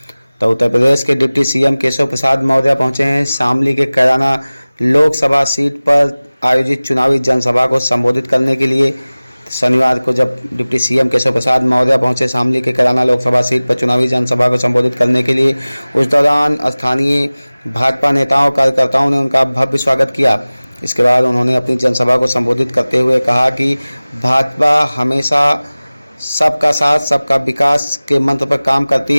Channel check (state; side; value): inverted; both; correlation -0.99